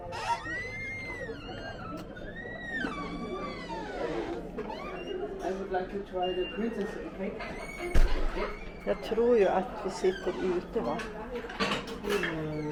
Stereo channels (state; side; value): identical; both; correlation 1.00